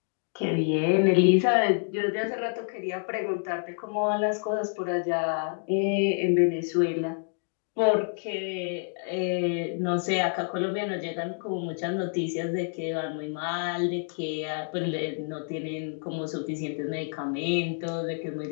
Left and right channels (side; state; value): right; silent; 59 dB below the other